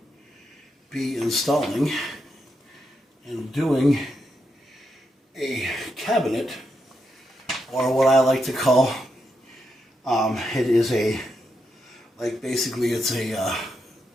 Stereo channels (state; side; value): normal; both; correlation 0.83